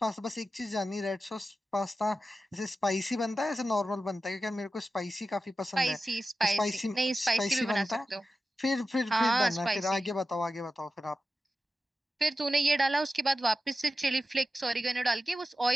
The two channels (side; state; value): both; normal; correlation 0.92